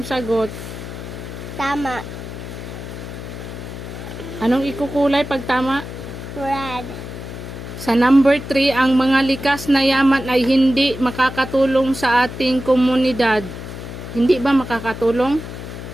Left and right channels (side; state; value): left; noise; hum, 10 dB below the sound